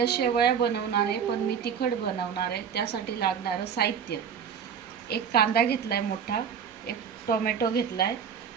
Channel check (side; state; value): left; quieter; 7.4 dB